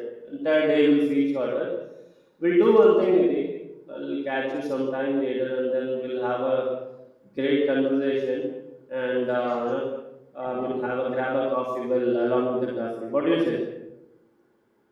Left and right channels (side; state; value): both; identical; correlation 1.00